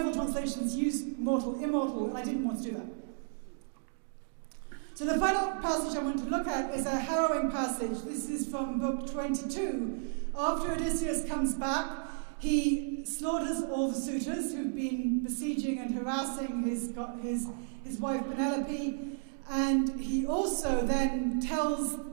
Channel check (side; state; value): left; silent; digital silence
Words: translations use mortal immortal, and I didn't want to do that. So the final passage I want to look at is a harrowing passage. This is from Book 22. After Odysseus comes back, he slaughters all the suitors who've been besieging and harassing his wife Penelope, and he also then tells